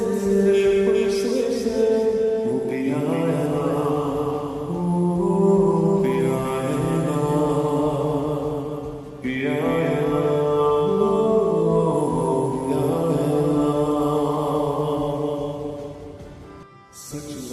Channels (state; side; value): identical; both; correlation 1.00